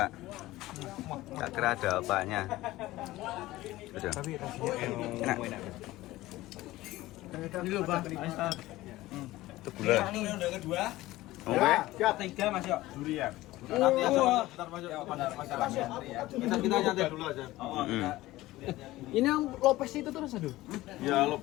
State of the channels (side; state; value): right; quieter; 17.4 dB